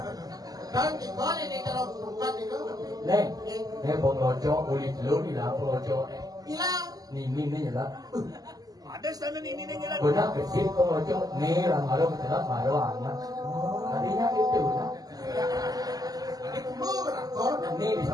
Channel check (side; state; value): left; late; 0.18 ms